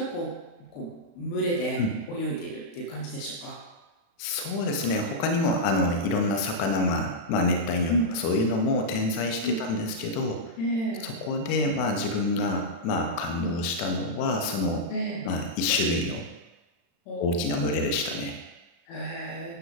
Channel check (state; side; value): late; right; 36 ms